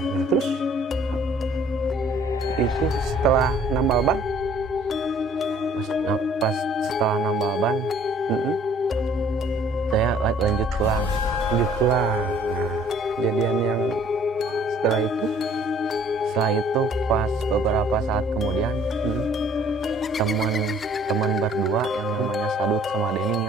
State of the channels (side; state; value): both; normal; correlation 0.57